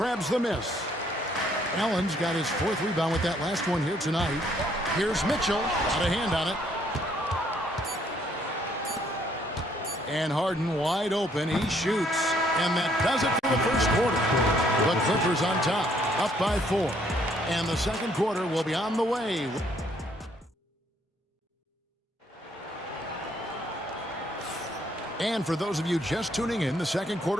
the miss. Allen's got his 4th rebound with that last one here tonight. Here's Mitchell, got a hand on it. And Harden wide open, he shoots. And that does it for the first quarter. The Clippers on top, up by 4. And the second quarter will be on the way. And for those of you just tuning in, the second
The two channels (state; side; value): normal; both; correlation 0.67